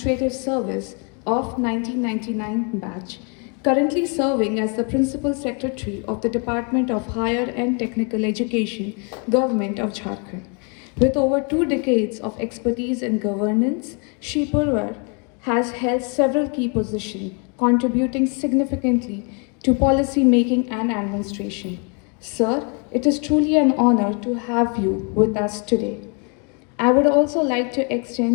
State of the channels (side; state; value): right; quieter; 36.6 dB